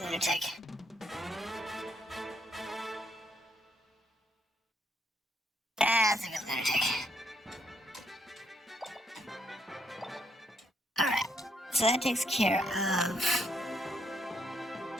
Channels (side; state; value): both; normal; correlation 0.74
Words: lunatic. That's a good lunatic. Alright, so that takes care of